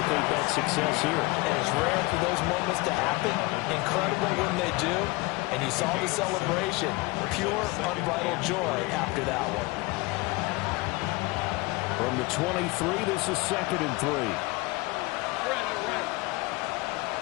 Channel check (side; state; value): right; quieter; 23.5 dB